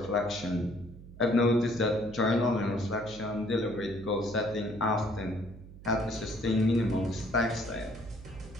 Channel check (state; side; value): noise; right; hum, 17 dB below the sound